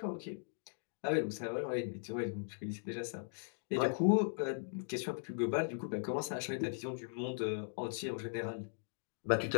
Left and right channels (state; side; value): silent; right; digital silence